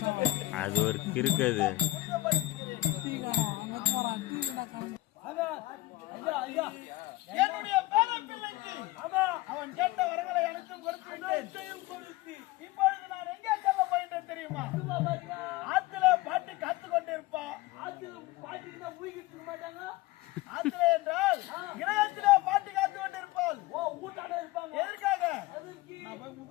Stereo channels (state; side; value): quieter; right; 18.5 dB